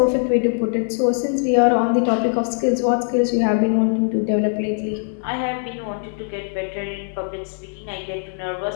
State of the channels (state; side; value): silent; right; digital silence